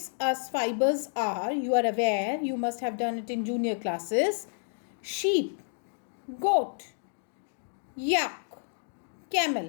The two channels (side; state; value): right; silent; digital silence